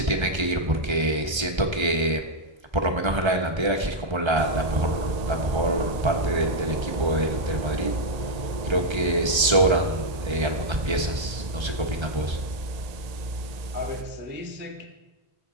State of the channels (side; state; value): left; late; 1.3 ms